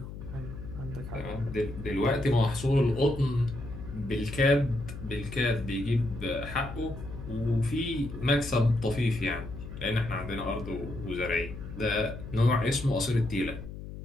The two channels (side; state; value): left; noise; hum, 11 dB below the sound